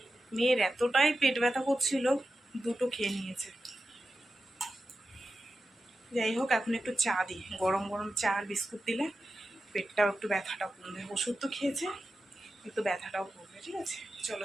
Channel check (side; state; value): both; normal; correlation 0.92